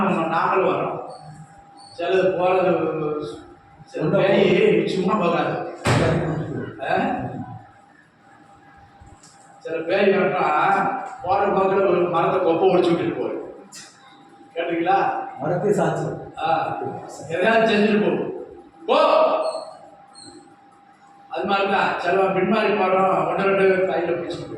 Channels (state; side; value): identical; both; correlation 1.00